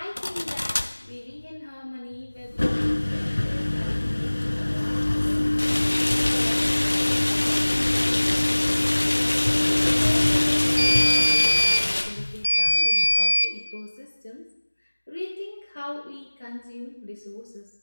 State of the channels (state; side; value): inverted; both; correlation -1.00